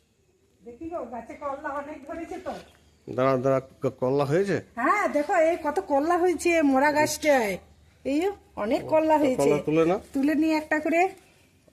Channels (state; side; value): identical; both; correlation 1.00